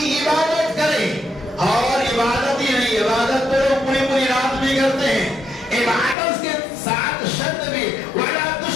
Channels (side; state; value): right; drops out; at 6.2 s